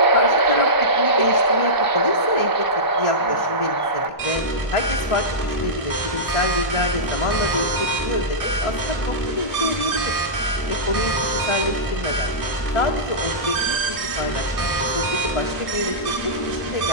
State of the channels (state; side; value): late; right; 1.4 ms